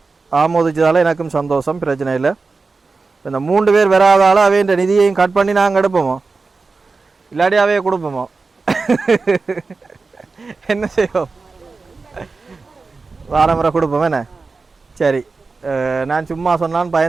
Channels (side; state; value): left; quieter; 4.1 dB